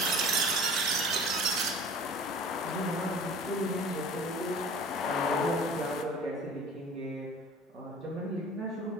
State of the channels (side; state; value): both; normal; correlation 0.43